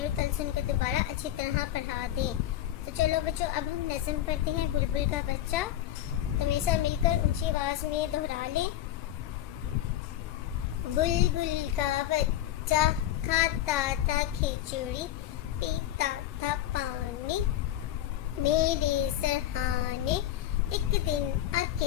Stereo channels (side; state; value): right; quieter; 12.7 dB